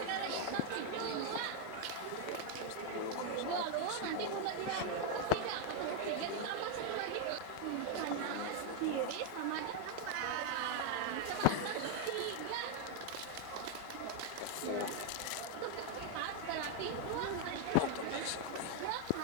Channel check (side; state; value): both; different; correlation 0.00